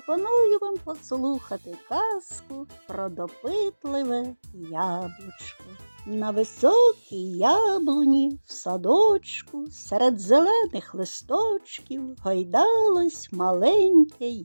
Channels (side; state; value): both; inverted; correlation -1.00